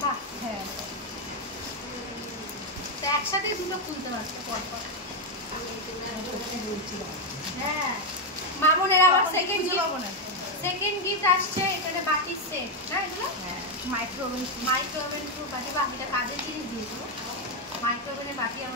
বাহ, হ্যাঁ তো একসাথে দুটো খুলতে পারতো পর পর। হ্যাঁ মামনের আবার সেকেন্ড সেকেন্ড গিফট আসছে এখানে বাটির সেট না এগুলো মাইক্রোওভেন বাটি বা এটা কাজের জিনিস দিয়েছো মাইক্রোওভেনের বাটি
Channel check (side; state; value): both; normal; correlation 0.04